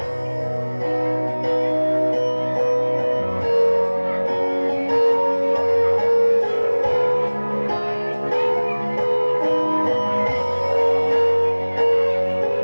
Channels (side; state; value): both; inverted; correlation -1.00